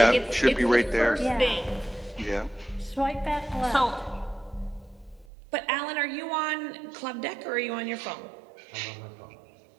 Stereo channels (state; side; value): drops out; left; at 5.2 s